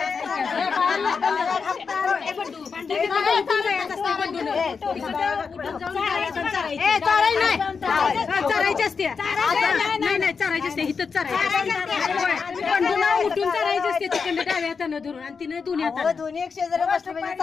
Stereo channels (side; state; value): right; quieter; 5.4 dB